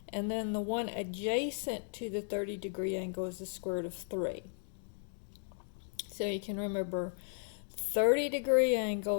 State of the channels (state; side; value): silent; right; digital silence